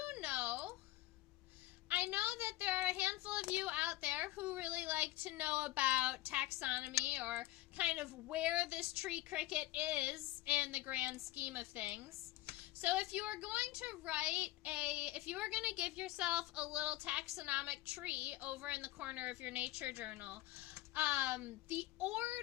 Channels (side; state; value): right; quieter; 17.4 dB